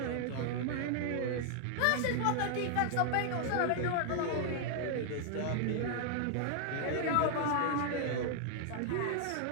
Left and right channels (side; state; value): both; different; correlation 0.00